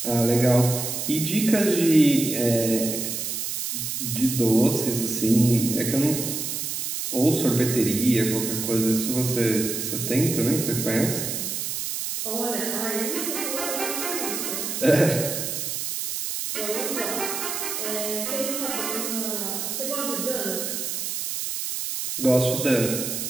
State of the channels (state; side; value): noise; right; hiss, 3 dB below the sound